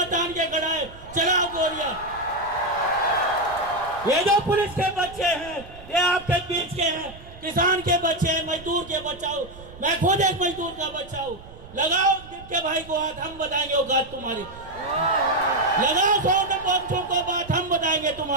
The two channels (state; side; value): noise; right; rumble, 18 dB below the sound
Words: तान के खड़ा है, चलाओ गोलियां। ये जो पुलिस के बच्चे हैं ये आपके बीच के हैं, किसान के बच्चे हैं, मजदूर के बच्चा हूं, मैं खुद एक मजदूर का बच्चा हूं। लगाओ के भाई को हाथ, हम बताएंगे औकात तुम्हारी। लगाओ सौ बच्चों को बात, हम बताएंगे